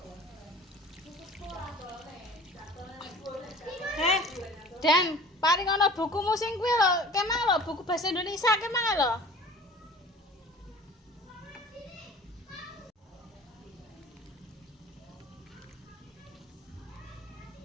Dan paling ana bukumu sing kuwi lho, kemang lho buku bahasa Indonesia kemang lho.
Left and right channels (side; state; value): both; normal; correlation 0.44